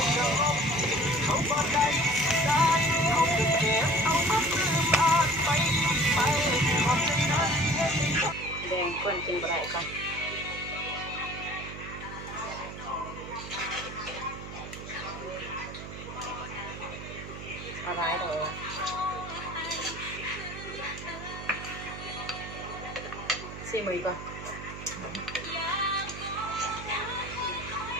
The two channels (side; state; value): right; noise; hum, 11 dB below the sound